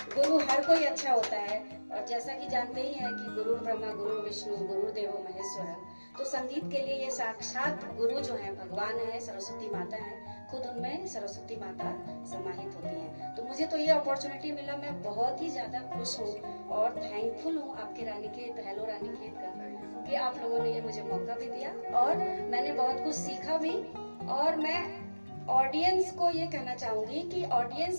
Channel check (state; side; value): inverted; both; correlation -1.00